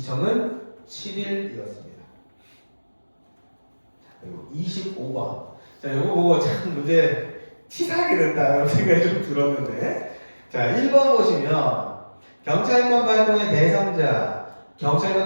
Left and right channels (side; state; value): both; inverted; correlation -1.00